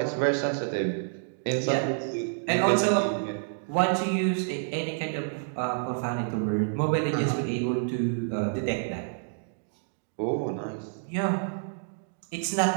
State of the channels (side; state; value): left; silent; digital silence